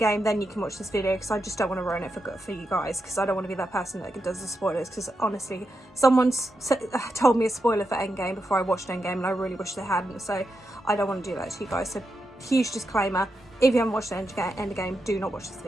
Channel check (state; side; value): normal; both; correlation 0.86